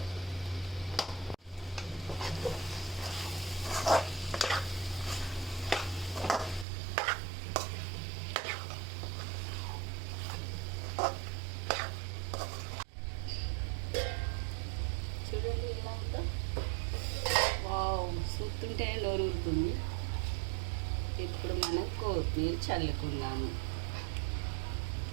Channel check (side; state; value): left; drops out; at 6.7 s